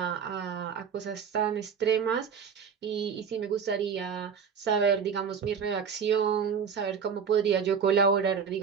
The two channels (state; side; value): quieter; left; 6.7 dB